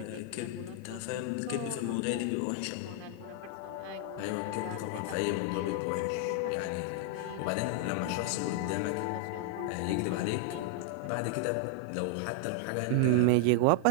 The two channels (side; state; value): both; different; correlation 0.00